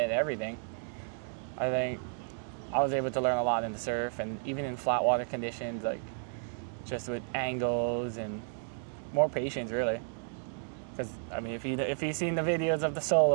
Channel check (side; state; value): left; silent; digital silence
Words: and everything. I think I was able to learn a lot in the surf and even in flat water conditions, like just with angles and more patience really. Because I mean, if you've seen the videos of the